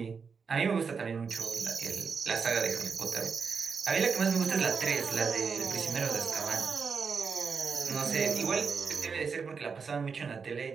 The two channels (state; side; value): quieter; left; 5.6 dB